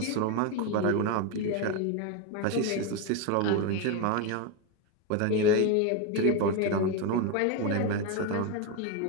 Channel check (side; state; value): both; different; correlation 0.02